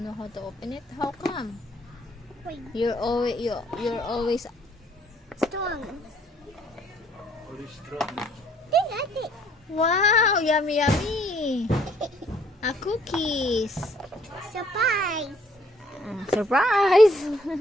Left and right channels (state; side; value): normal; both; correlation 0.63